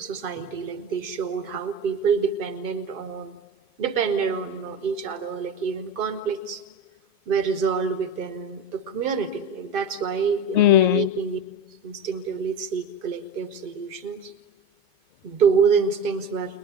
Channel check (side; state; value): left; late; 2.5 ms